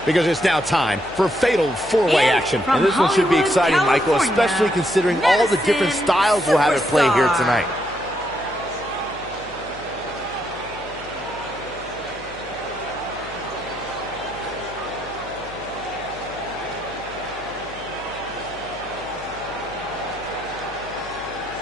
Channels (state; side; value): noise; left; hum, 20 dB below the sound